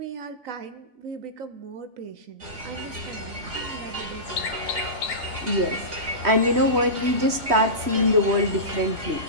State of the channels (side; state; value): left; late; 3.1 ms